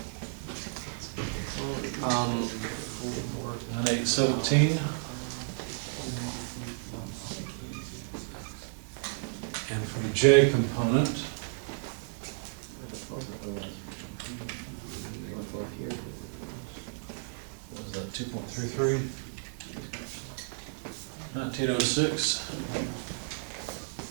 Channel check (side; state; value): left; silent; digital silence